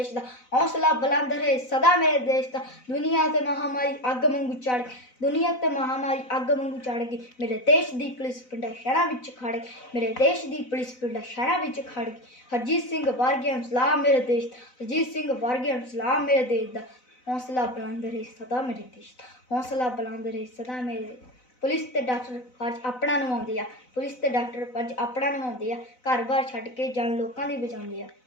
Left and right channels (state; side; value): late; right; 4.0 ms